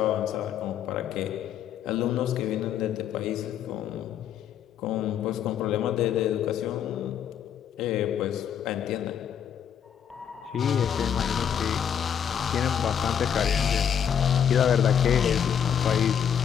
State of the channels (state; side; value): quieter; right; 8.5 dB